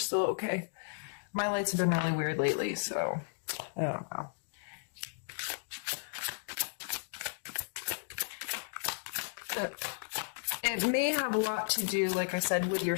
okay. My lights have been really weird lately, so I don't know. It may have a lot to do, like I said, with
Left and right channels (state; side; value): silent; right; digital silence